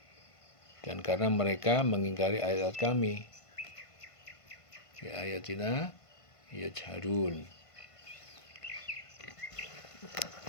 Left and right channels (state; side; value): late; right; 1.5 ms